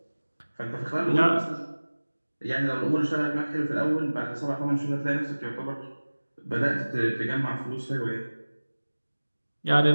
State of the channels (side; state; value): both; inverted; correlation -1.00